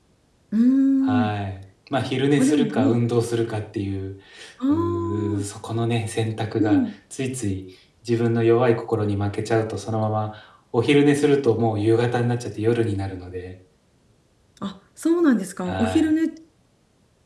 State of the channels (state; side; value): identical; both; correlation 1.00